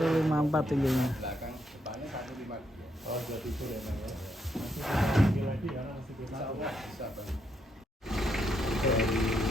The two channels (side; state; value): both; normal; correlation 0.78